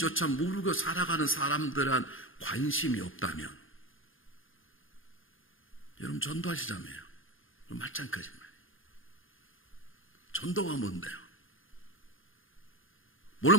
모르고 살아가는 사람들한 관심이 없다면 여러분 전도하시자며요. 말짱 거짓말. 전도가 뭔데요?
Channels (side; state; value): right; late; 0.59 ms